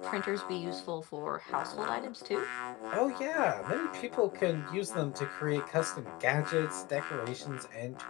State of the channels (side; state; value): right; quieter; 22.1 dB